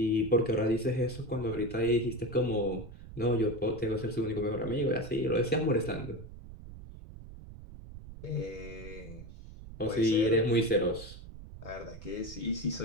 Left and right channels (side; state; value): right; noise; rumble, 14 dB below the sound